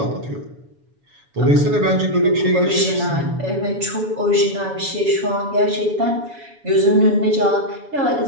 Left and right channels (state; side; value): late; left; 7.1 ms